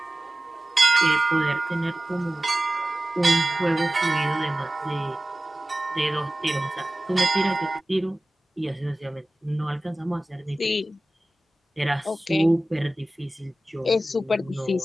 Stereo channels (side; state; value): both; normal; correlation 0.97